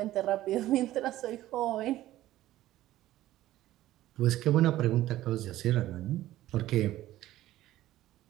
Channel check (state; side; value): quieter; left; 14.8 dB